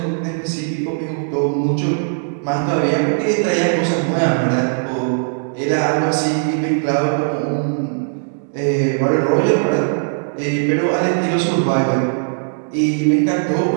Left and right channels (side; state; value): left; silent; 67 dB below the other